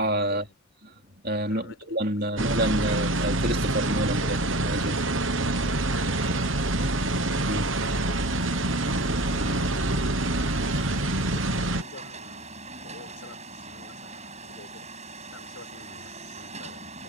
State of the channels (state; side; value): normal; both; correlation 0.37